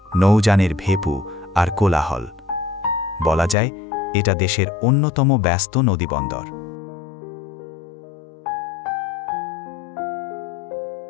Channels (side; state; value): right; drops out; at 3.6 s